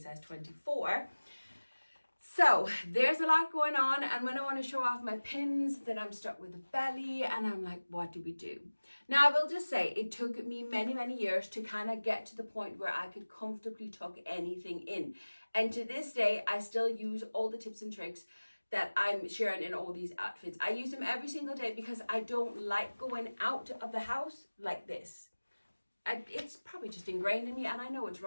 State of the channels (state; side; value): inverted; both; correlation -1.00